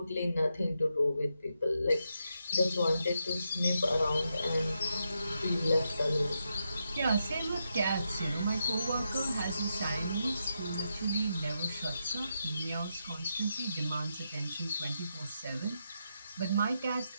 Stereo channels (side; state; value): both; inverted; correlation -0.84